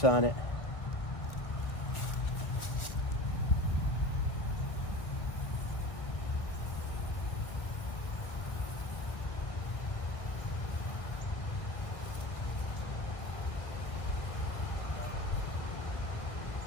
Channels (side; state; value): right; late; 1.4 ms